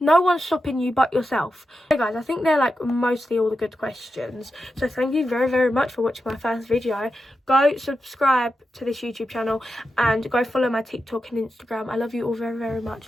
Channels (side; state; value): both; normal; correlation 0.89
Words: one's stopping you but yourself. Hey guys, I think they're like mostly all the good questions. So thank you very, very much for watching my first video. Go subscribe to this YouTube channel and go follow my TikTok and Instagram. I love you all very, very